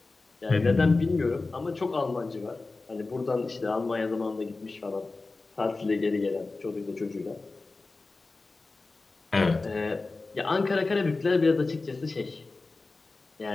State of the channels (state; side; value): quieter; right; 3.6 dB